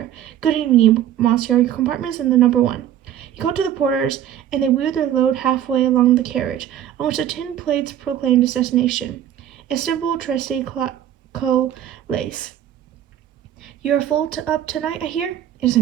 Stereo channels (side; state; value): left; quieter; 10.9 dB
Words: Good evening, monsieur. Your compartment is in the number 1. He called to the porters, and they wheeled their load halfway along the carriage, on which the tin plates proclaimed its destination. Istanbul, Trieste, Lace. You are full up tonight, I hear? It is